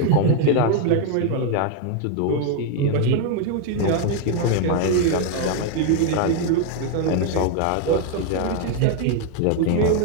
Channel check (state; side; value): different; both; correlation 0.00